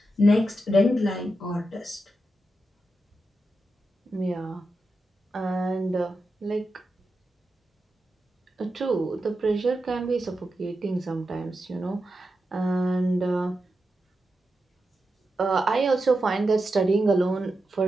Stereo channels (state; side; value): normal; both; correlation 0.89